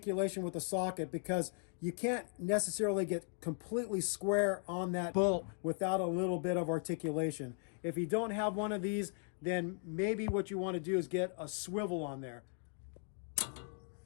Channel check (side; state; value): right; silent; 53 dB below the other